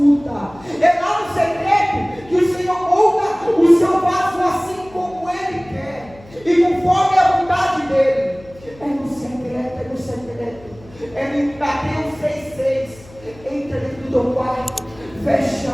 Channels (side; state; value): left; noise; hum, 23 dB below the sound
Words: É lá no secreto que o Senhor molda o seu vaso assim como Ele quer. E conforme a vontade dEle. É no secreto, é no secreto. É no Mateus 6,6. Entra dentro do teu quarto, feche